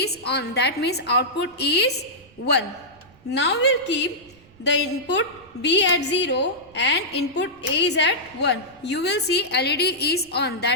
on. That means output is 1. Now we will keep the input B at 0 and input A is at 1. You will see LED is on.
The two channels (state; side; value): noise; right; rumble, 28 dB below the sound